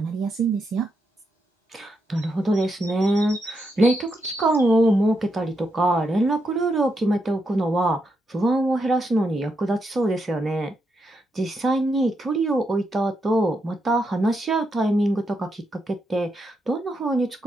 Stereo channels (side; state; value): both; normal; correlation 0.82